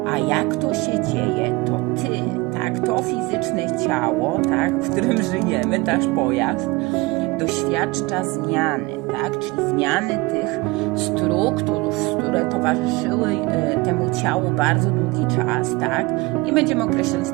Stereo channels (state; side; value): quieter; left; 23.3 dB